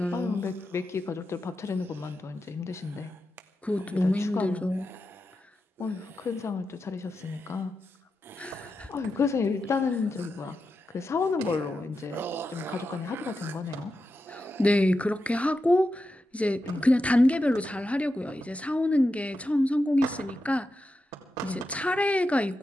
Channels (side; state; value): both; normal; correlation 0.89